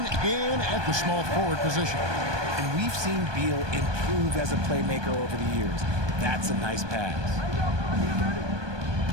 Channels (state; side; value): late; left; 1.2 ms